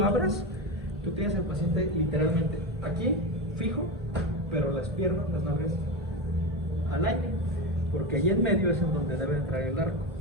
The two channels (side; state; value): both; normal; correlation 0.19